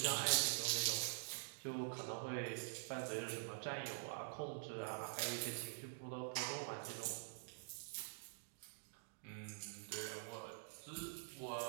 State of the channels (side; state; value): left; silent; digital silence